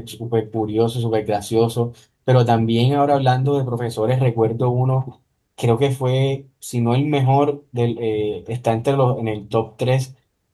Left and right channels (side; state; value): both; identical; correlation 1.00